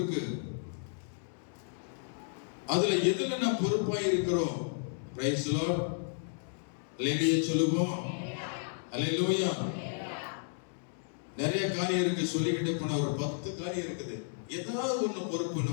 அதுல எதுல நான் பொறுப்பாய் இருக்கிறோம்? Price the Lord. அல்லேலூயா சொல்லுவோம். அல்லேலூயா. நிறைய காரியம் இருக்கு, சொல்லிக்கிட்டே போன ஒரு 10 காரியம் இருக்குது. ஏதாவது ஒண்ணு பொறுப்பு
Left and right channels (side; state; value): right; silent; digital silence